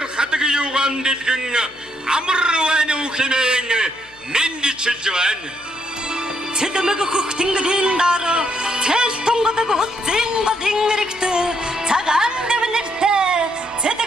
хадаг юугаан дэлгэн амар байна уу хэмээн мэндичилж байна. Цэдэмэг хөхтөнгөлийн дараа цэл тунгадаг хөцөнгөд ингэрэгт цагаан дэвнэртэй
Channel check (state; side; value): noise; left; hum, 27 dB below the sound